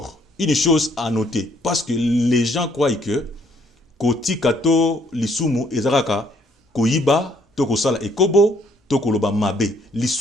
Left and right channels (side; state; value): both; normal; correlation 0.65